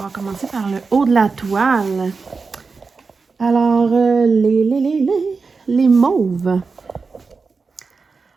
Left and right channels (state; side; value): quieter; left; 4.6 dB